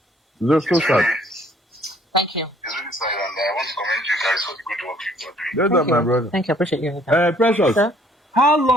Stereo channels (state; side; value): normal; both; correlation 0.61